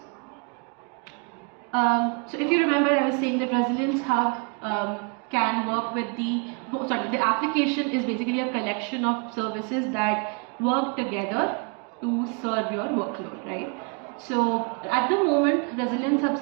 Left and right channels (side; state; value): left; quieter; 36.4 dB